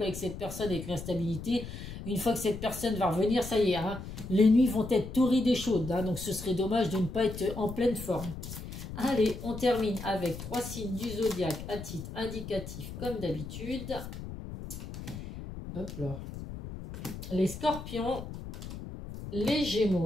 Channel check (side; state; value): left; noise; rumble, 10 dB below the sound